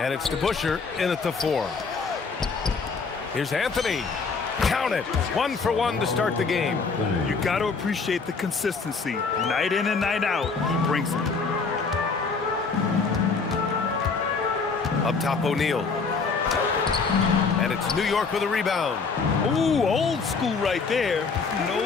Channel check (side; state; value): right; quieter; 4.8 dB